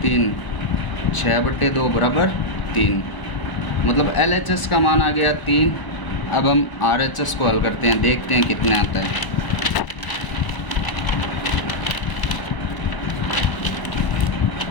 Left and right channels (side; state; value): right; late; 1.0 ms